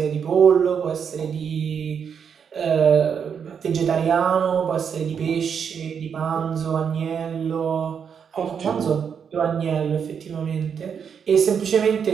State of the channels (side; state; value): left; quieter; 7.1 dB